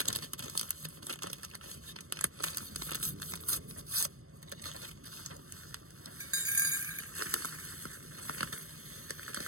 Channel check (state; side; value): late; left; 0.63 ms